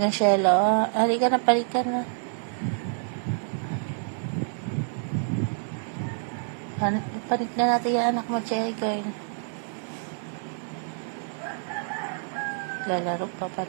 Shelo. Halika na, palikan na. Panik na natin yung anak mo, Cherry Girl. Lalaro pa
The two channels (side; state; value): left; silent; 60 dB below the other